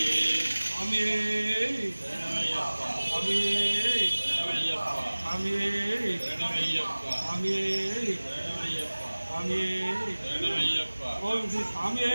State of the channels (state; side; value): inverted; both; correlation -1.00